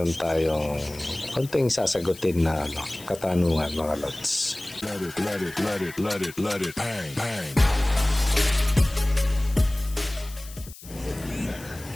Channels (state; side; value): noise; left; hiss, 17 dB below the sound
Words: tayong konting sasagutin na katanungan mga lods. Let it, bang, bang.